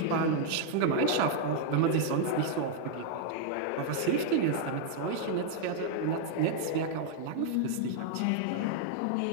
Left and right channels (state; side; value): different; both; correlation 0.00